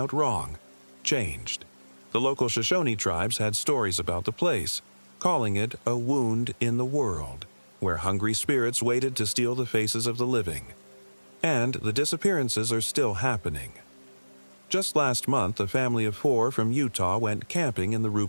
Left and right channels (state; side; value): inverted; both; correlation -1.00